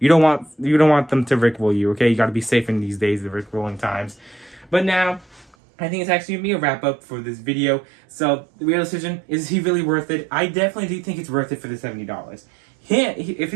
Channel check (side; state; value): left; drops out; at 5.6 s